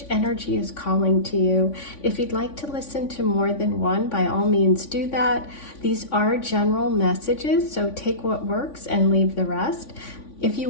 energy is calling to you. If you'd like to listen to more than one, by all means do that. These are general messages, so take what works and leave the rest. If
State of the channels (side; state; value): right; late; 3.5 ms